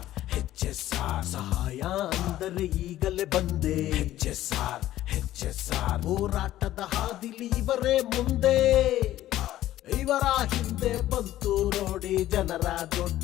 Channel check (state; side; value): quieter; right; 14.0 dB